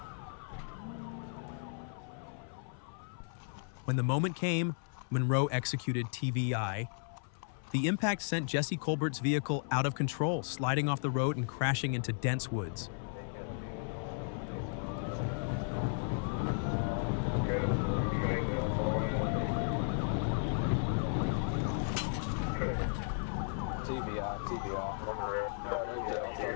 When the moment came, Monroe executed TVI. The impact sent Jesse Colbert's vehicle out of control, sliding off the road and crashing into dense woods.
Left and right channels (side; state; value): right; silent; 54 dB below the other